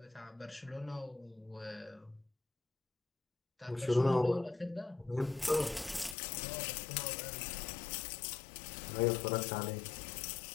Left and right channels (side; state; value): right; drops out; at 6.2 s